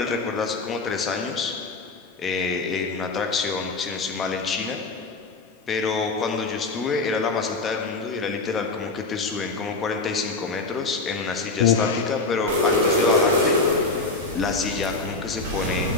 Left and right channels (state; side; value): quieter; right; 3.6 dB